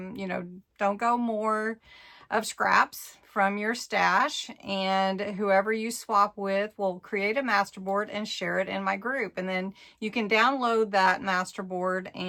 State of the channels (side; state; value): both; identical; correlation 1.00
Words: go more of scraps from your stash, and whoever you swap with will create a masterboard and share it in my group. And then you can download that masterboard